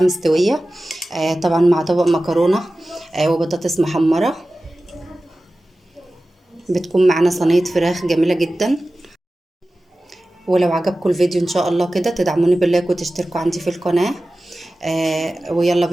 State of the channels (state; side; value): normal; both; correlation 0.96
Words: طبعا مع طبق مكرونة وبطاطس محمرة. بتكون معانا صينية فراخ جميلة جدا. ولو عجبكم الفيديو ان شاء الله كده تدعموني باللايك وتشتركوا عندي في القناة. ويلا